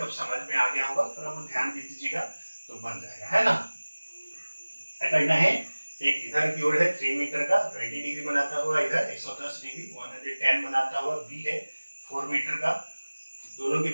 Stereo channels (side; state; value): both; inverted; correlation -1.00